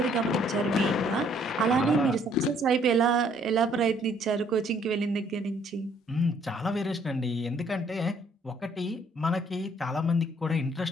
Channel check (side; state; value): both; normal; correlation 0.64